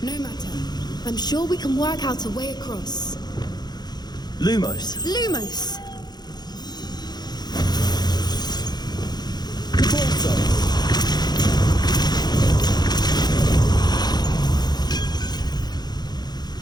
No matter. I'm sure we can work out a way across. Lumos. Lumos!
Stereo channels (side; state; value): right; late; 0.20 ms